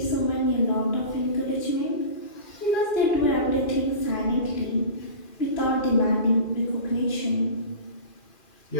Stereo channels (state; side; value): late; right; 2.4 ms